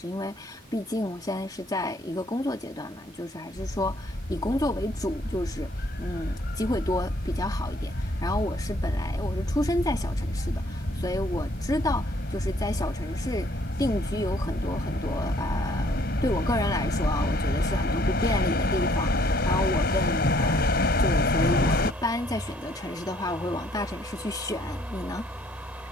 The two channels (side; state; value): both; normal; correlation 0.63